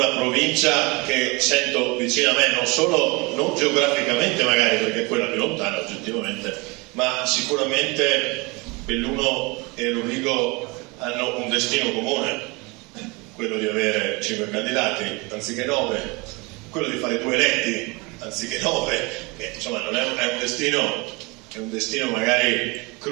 provincia che sento vicina a me, non geograficamente magari, perché è quella più lontana oggettivamente, ma sicuramente Belluno e Rovigo hanno un destino comune, quello di avere 5 candidati anziché 9, quello di fare 2 eletti anziché 9, che insomma non è un destino magari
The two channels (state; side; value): quieter; left; 26.7 dB